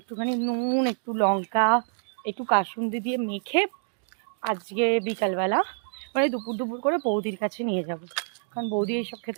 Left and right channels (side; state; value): left; silent; digital silence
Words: নুন, একটু লঙ্কা, একটু কাসুন্দি দিয়ে মেখে আজকে বিকালবেলা, মানে দুপুর দুপুর করে বৌদির কাছে নিয়ে যাব। কারণ বৌদি এইসব